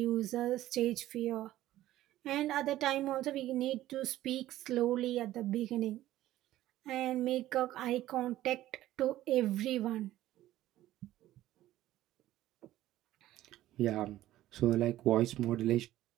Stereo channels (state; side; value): quieter; left; 14.5 dB